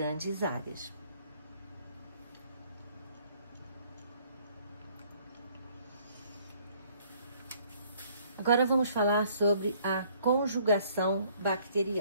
áreas. Agora vamos falar sobre a conjugação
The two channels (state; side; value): inverted; both; correlation -0.62